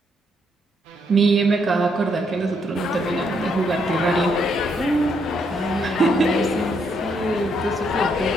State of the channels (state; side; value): normal; both; correlation 0.74